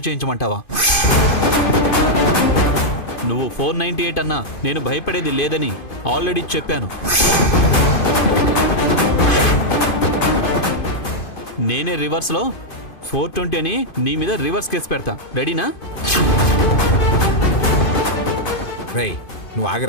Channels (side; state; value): right; late; 2.5 ms